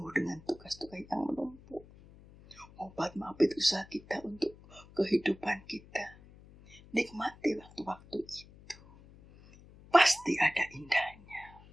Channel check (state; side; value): noise; left; hum, 22 dB below the sound